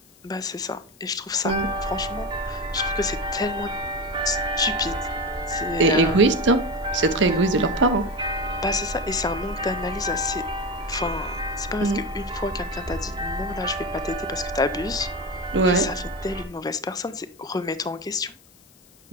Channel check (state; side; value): noise; left; hiss, 28 dB below the sound